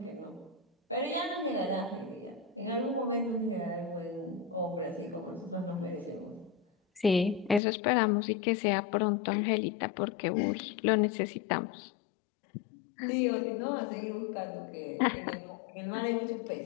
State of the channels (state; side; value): drops out; right; at 7.6 s